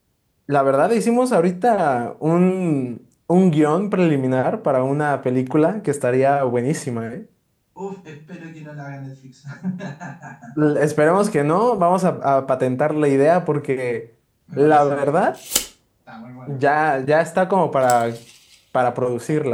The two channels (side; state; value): both; identical; correlation 1.00